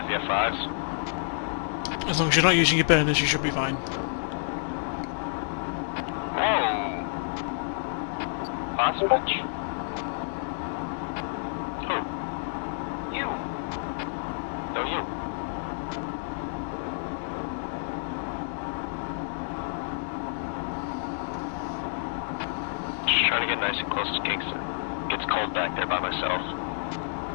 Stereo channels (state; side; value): silent; right; digital silence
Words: the F5s? As long as you're not using your burners, you should be fine. Whoa! Last match? Who? You! No, you. Just trying to get nice and close to Kingston. Gets cold back there by myself.